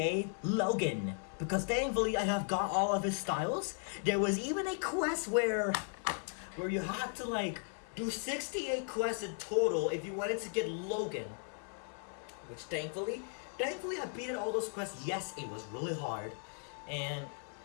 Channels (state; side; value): silent; right; 53 dB below the other